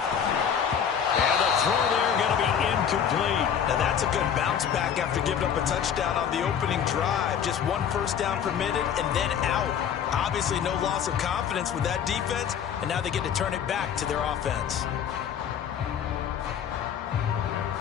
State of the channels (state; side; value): quieter; right; 8.2 dB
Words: the throw there going to be incomplete. Now that's that's a good bounce back after giving up a touchdown on the opening drive. Just one first down permitted and then out. Obviously no loss of confidence with that defense, and now they get to turn it back to their offense.